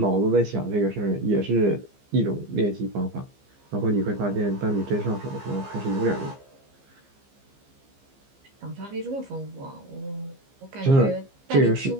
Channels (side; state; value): left; late; 15 ms